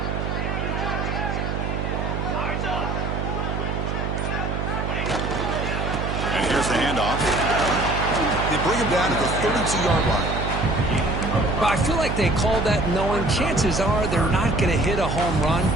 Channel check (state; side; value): noise; right; hum, 2 dB below the sound